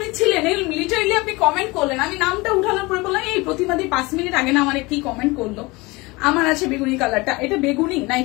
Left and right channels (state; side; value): quieter; right; 23.8 dB